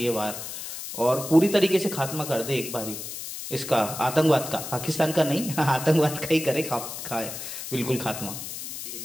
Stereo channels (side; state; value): left; noise; hiss, 8 dB below the sound